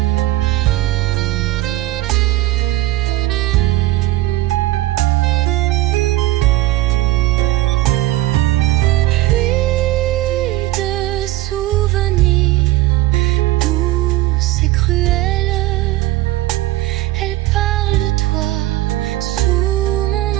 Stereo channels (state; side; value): quieter; left; 17.0 dB